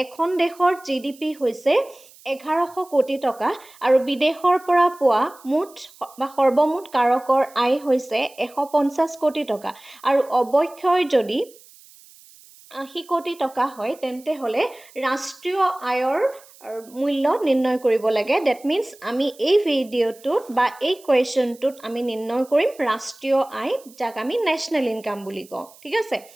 এখন দেশৰ GDP হৈছে 1100 কোটি টকা আৰু বিদেশৰ পৰা পোৱা মুঠ বা সৰ্বমুঠ কাৰকৰ আয় হৈছে 150 কোটি টকা আৰু অৱক্ষয় যদি 80 কোটি টকা হয় তেন্তে হ'লে ৰাষ্ট্ৰীয় আয়ৰ মূল্য নিৰ্ণয় কৰিব লাগে। ডেট মিনছ আমি এই ভিডিঅ'টোত বা এই কুৱেশ্যনটোত আমি নিৰ্ণয় কৰিম ৰাষ্ট্ৰীয় আয়, যাক আমি নেশ্যনেল ইনকাম বুলি কওঁ। ঠিক আছে,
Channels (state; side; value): noise; right; hiss, 24 dB below the sound